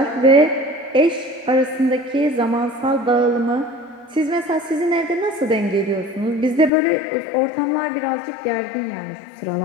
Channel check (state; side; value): drops out; right; at 6.7 s